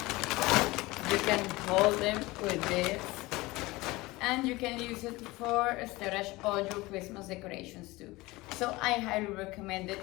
You can hold them with this, and you can use it for storage all your Christmas decorations too. So I highly recommend it.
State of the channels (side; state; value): right; quieter; 21.0 dB